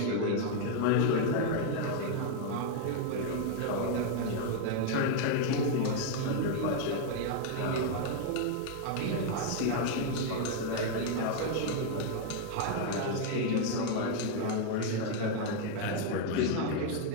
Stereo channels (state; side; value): different; both; correlation 0.00